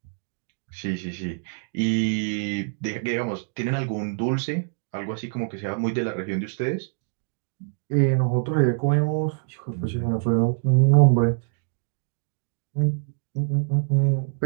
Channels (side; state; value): left; silent; digital silence